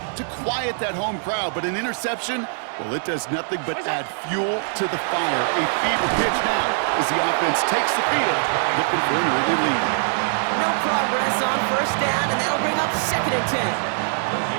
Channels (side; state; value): left; silent; digital silence